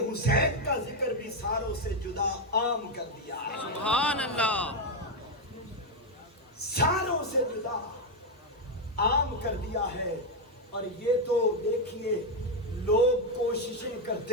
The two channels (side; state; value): both; normal; correlation 0.05